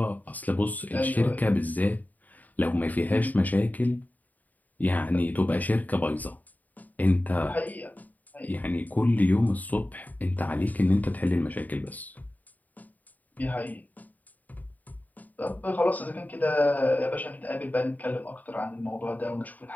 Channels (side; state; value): right; late; 0.079 ms